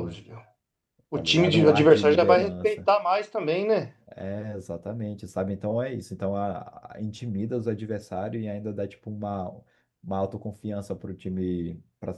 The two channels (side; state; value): both; identical; correlation 1.00